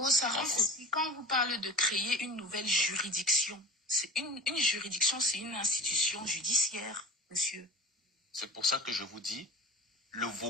Sarah, quand vous parlez de créer une nouvelle juridiction, c'est une juridiction, c'est une institution judiciaire, monsieur. C'est pour ça que je vous dis, le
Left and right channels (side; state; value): both; normal; correlation 0.38